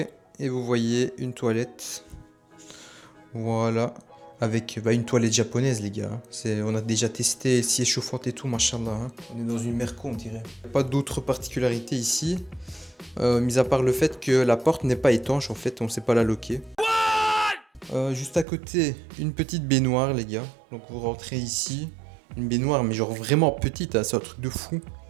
et vous voyez une toilette. Voilà, avec une toilette japonaise, les gars. On a déjà testé, si est chauffante et tout, machallah. Hein. On est dans une merco, on dirait. Pas d'autres particularités ici, mis à part le fait que la porte n'est pas étanche, en fait, on ne sait pas la loquer. Juste à côté, une petite baignoire, les gars. Donc vous rentrez ici, une baignoire, mais genre vraiment petite, hein, c'est un truc de fou.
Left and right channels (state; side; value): drops out; left; at 18.4 s